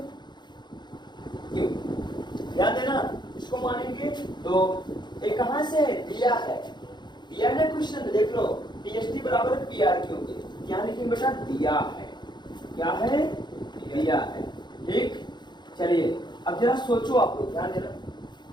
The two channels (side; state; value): right; late; 0.21 ms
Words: ध्यान देना, इसको मानेंगे दो। ये कहां से है, दिया है क्वेश्चन, देख लो, PST बराबर है PRQ के, क्या लिखेंगे बेटा, दिया है, क्या है, दिया है। ठीक, चलिए अब जरा सोचो आप लोग, ध्यान देना,